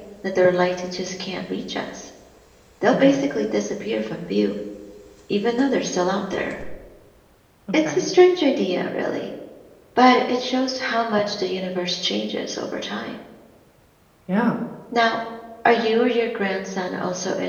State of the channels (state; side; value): identical; both; correlation 1.00